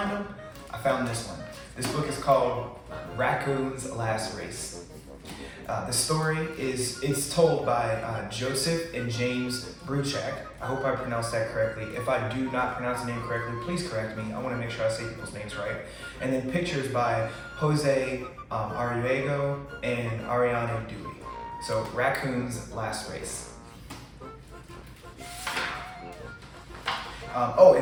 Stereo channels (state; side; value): identical; both; correlation 1.00